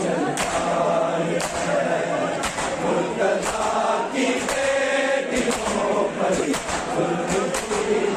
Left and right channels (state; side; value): identical; both; correlation 1.00